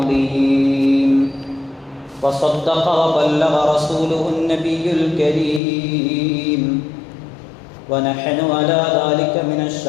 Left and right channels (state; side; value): drops out; right; at 5.6 s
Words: وصدق وبلغ رسوله النبي الكريم ونحن على ذلك من